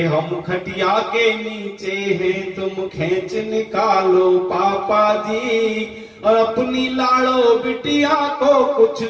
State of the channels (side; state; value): both; identical; correlation 1.00